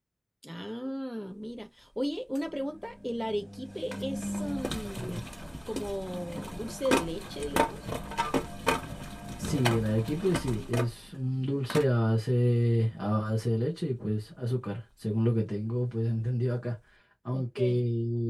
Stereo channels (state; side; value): identical; both; correlation 1.00